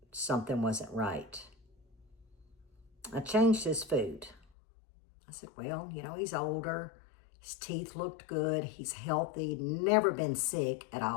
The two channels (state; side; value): drops out; right; at 4.4 s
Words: something wasn't right. I changed his food. I said, well, you know, he's older. His teeth looked good. He's healthy. Never been sick at